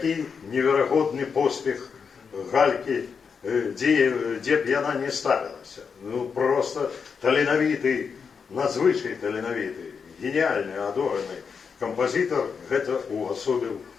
неверагодны поспех Галькі, дзе б яна не ставілася. Ну, просто таленавіты, надзвычай таленавіты, гениальны, адораны кампазітар гэта увасобіў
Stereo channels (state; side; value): quieter; right; 6.0 dB